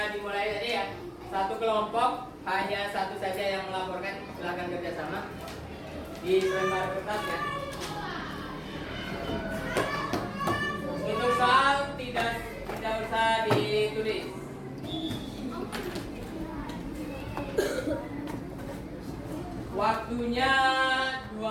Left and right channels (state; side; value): identical; both; correlation 1.00